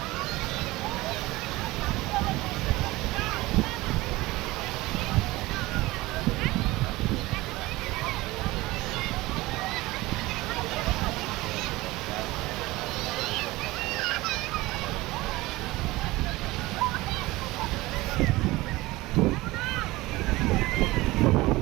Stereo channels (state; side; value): quieter; left; 19.8 dB